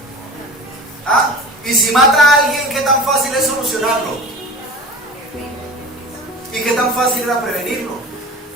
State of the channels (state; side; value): normal; both; correlation 0.35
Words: ¿Ah? Y si mata a alguien, ¿qué tan fácil es solucionarlo? ¿Y qué tan fácil era prevenirlo?